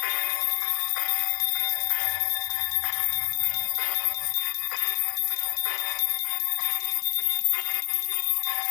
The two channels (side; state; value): right; silent; 59 dB below the other